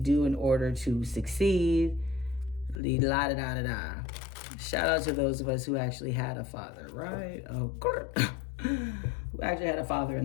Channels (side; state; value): right; drops out; at 2.8 s